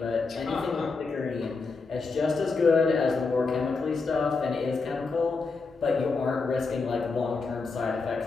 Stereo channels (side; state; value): right; quieter; 4.3 dB